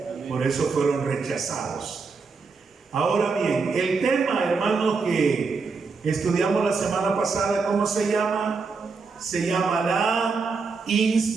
por eso fueron rechazados. Ahora bien, el tema, hermanos, que estudiamos la semana pasada, ¿cómo se llama? Se llama la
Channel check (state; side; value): quieter; left; 4.6 dB